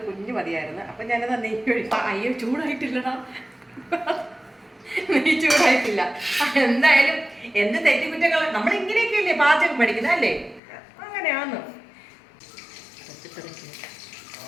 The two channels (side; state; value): right; drops out; at 10.6 s